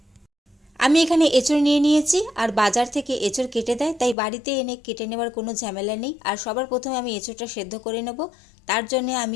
আমি এখানে এঁচড় নিয়ে নিয়েছি, আর বাজার থেকে এঁচড় কেটে দেয়, তাই বাড়িতে এনে কেটে নেওয়ার কোনো ঝামেলা নেই। আর সবার প্রথমে আমি এঁচড়টা সেদ্ধ করে নেব। তার জন্য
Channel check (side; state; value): right; drops out; at 4.2 s